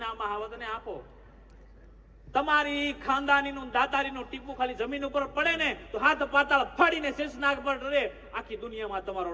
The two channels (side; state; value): both; identical; correlation 1.00